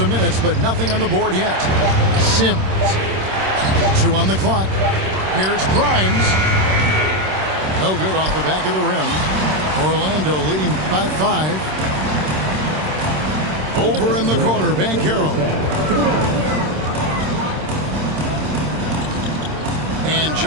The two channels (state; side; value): late; left; 26 ms